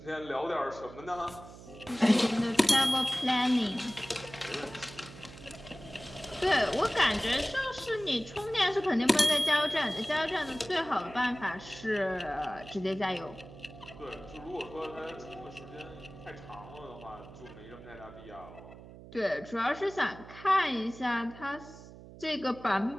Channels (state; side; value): noise; right; hum, 17 dB below the sound